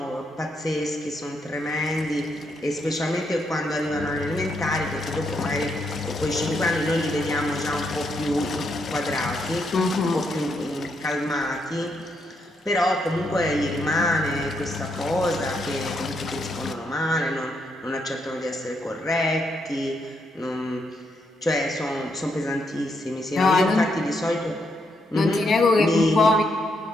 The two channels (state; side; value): normal; both; correlation 0.78